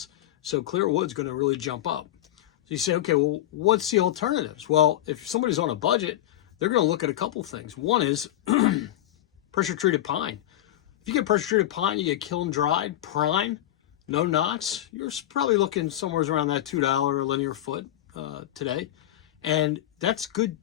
So clear wood's going to really jump up. So you say, okay, well, what's the alternatives? Well, if somebody's on a budget, they're going to look at a couple things. One is pressure treated pine. If you get pressure treated pine, you get kiln dried, prime, no knots, you're probably looking somewhere around that $2 a linear foot today. And that's good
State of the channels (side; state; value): right; quieter; 13.3 dB